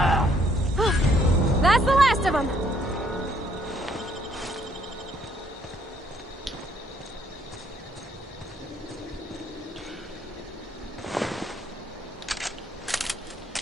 That's the last of them.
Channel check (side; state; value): both; normal; correlation 0.67